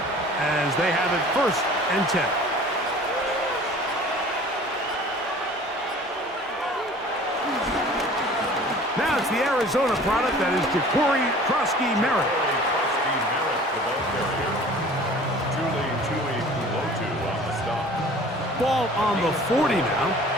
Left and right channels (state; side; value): normal; both; correlation 0.46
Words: as they have it 1st and 10. Now it's the Arizona product that is Ja'Cory Krosky-Merritt. Ball on the 40 now.